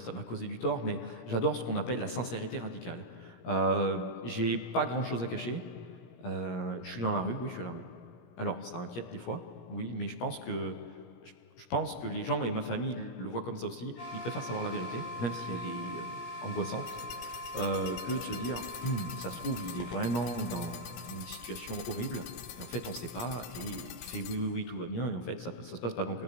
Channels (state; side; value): late; right; 17 ms